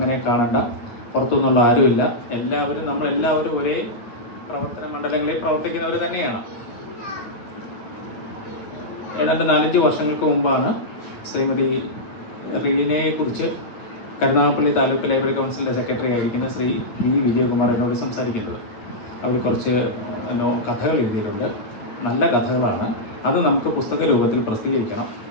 കാണണ്ട. പുറത്തുനിന്നുള്ള ആരുമില്ല. നമ്മളെല്ലാവരും ഒരേ പ്രവർത്തന മണ്ഡലങ്ങളിൽ പ്രവർത്തിക്കുന്നവർ തന്നെയാണ്. ഏതാണ്ട് 4-5 വർഷങ്ങൾക്ക് മുമ്പാണ് ശ്രീമതി റീനയെക്കുറിച്ച് കരുനാഗപ്പള്ളി താലൂക്ക് ലൈബ്രറി കൗൺസിലിൻ്റെ സെക്രട്ടറി ആയിരിക്കുന്ന ശ്രീ വി വിജയകുമാർ എന്നോട് സംസാരിക്കുന്നത്. അവർ കുറച്ച് കഥകൾ എഴുതിയിട്ടുണ്ട്. നല്ല കഥകളാണ്. അത് നമുക്ക് പുസ്തക രൂപത്തിൽ പ്രസിദ്ധീകരിക്കണം.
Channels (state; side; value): late; right; 9.0 ms